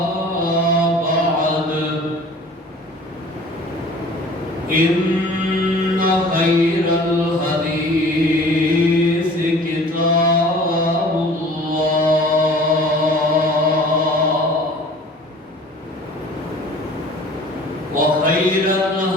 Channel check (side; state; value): both; normal; correlation 0.46